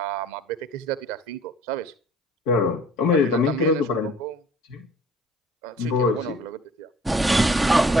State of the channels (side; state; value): both; normal; correlation 0.53